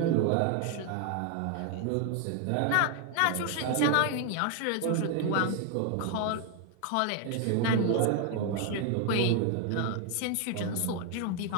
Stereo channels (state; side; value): different; both; correlation 0.00